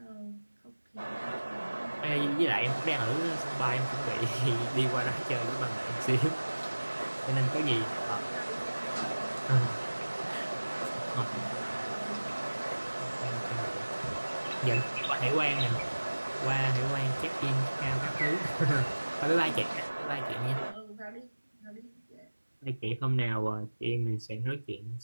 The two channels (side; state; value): both; inverted; correlation -1.00